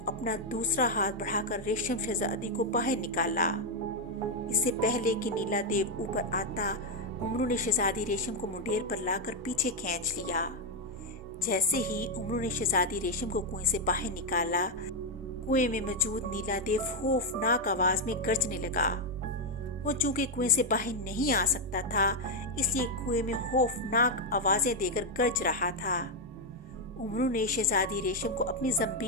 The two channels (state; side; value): normal; both; correlation 0.02